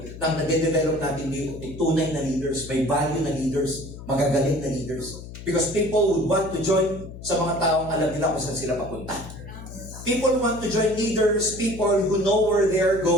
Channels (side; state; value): left; noise; hum, 13 dB below the sound